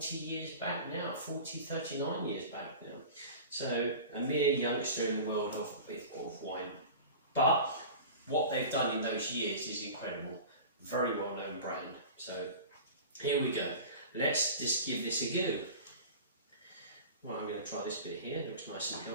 years back now, 39 years back now. So a mere youngster in the world of wine. But what they've done in those years is incredible. Very well known brand. So here we go. Let's just give this a go. Well, I'm going to try this bit here. It looks nice and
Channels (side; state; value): both; inverted; correlation -0.36